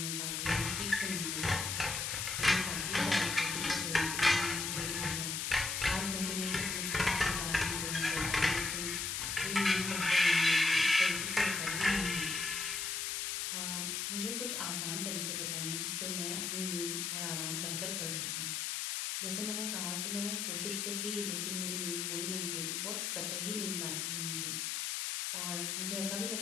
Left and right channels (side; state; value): left; noise; hiss, 1 dB below the sound